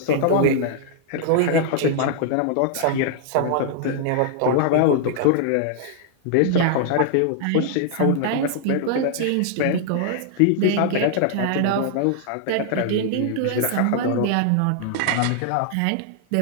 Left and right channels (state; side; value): different; both; correlation -0.01